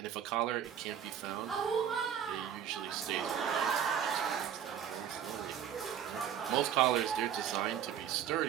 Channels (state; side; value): quieter; left; 9.1 dB